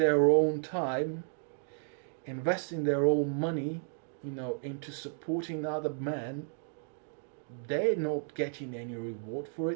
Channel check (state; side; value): silent; left; digital silence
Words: own time, investing their own money, you know, into supporting other men, they're not getting any reward for